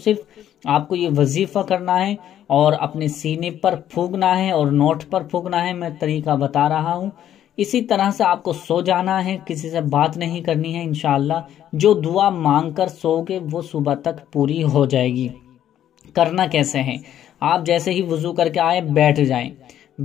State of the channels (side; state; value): right; quieter; 11.0 dB